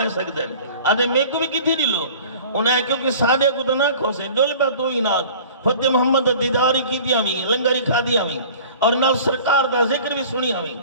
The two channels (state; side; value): inverted; both; correlation -0.45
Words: سکتے ہیں آدھے میں کو بھی کتھی دی لو انہیں کیونکہ سادے کو تو نہ کھوسے ڈول پہ تو ہی ناد فتح محمد دیداری کی دیا ہوئی لنگری کھا دیا ہوئی اور نال سرکار دا ذکر بھی سنی ہوئی